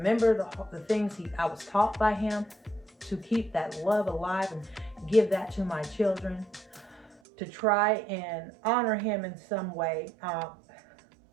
the things I was taught by him, to keep that love alive and give that to my children, to try and honor him in some way.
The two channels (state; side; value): drops out; left; at 7.2 s